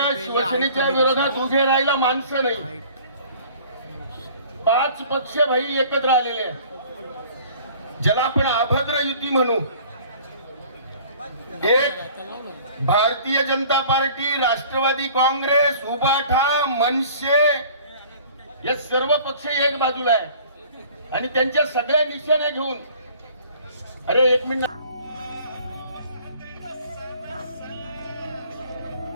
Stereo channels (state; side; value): inverted; both; correlation -0.50